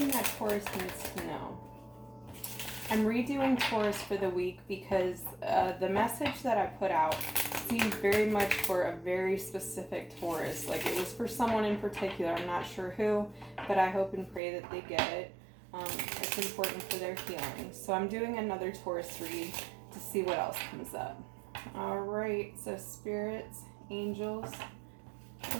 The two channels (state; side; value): drops out; left; at 14.4 s